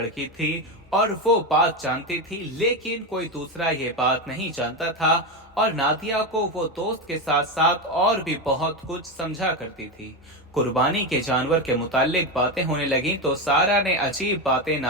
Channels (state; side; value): normal; both; correlation 0.14